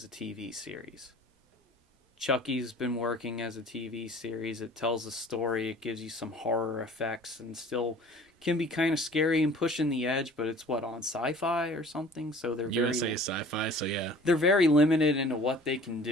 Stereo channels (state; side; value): normal; both; correlation 0.48